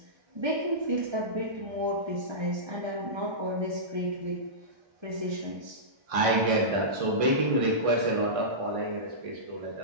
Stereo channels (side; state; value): left; late; 1.6 ms